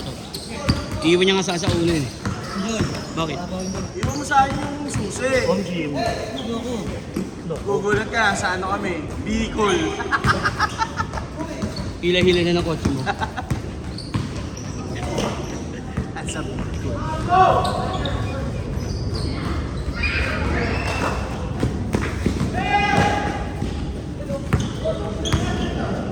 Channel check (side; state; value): both; identical; correlation 1.00